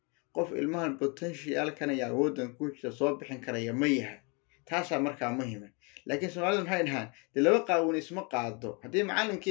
qof ilmaha potential kana yaa wadan ku jira soo bixin karaya ma yahay taasa marka muhiim laakiin Soomaalidu maxay dhahaan laba qaawin isma qaado hadii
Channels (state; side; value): quieter; right; 32.1 dB